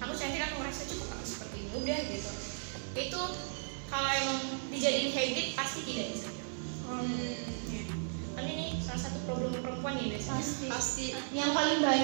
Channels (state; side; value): silent; left; digital silence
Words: Aku cantik, aku merasa cukup aku seperti ini udah gitu. Itu kalau emang dijadiin habit pasti tidak insecure. Kan ini salah satu problem perempuan ya biasanya. Pasti. Yang paling